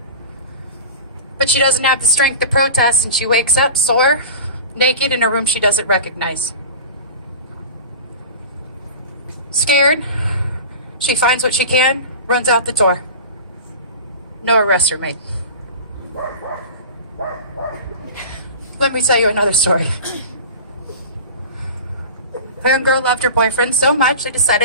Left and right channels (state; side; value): inverted; both; correlation -0.34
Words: But she doesn't have the strength to protest, and she wakes up sore, naked in a room she doesn't recognize. Scared, she finds what she can, runs out the door. No arrests are made. Let me tell you another story. A young girl loved her boyfriend so much they